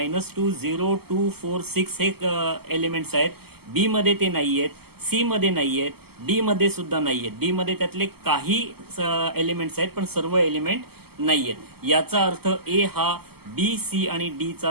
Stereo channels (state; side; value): late; left; 0.96 ms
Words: 0 2 4 6 हे एलिमेंट्स आहेत. बी मध्ये ते नाही आहेत, सी मध्ये नाही आहेत, डी मध्ये सुद्धा नाही आहेत. डी मध्ये त्यातले काही एलिमेंट्स आहेत पण सर्व एलिमेंट नाही आहेत. याचा अर्थ ए हा बी सी आणि डी